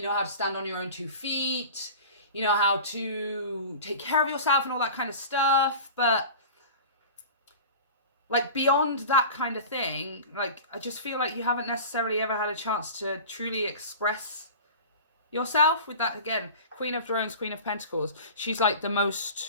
know how to stand on your own 2 feet, you know how to take care of yourself and all that kind of stuff. But, like, beyond that kind of thing, like, I just feel like you haven't necessarily ever had a chance to truly express yourself with that. Again, Queen of Drones, Queen of Pentacles. She's like the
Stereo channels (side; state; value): both; inverted; correlation -0.36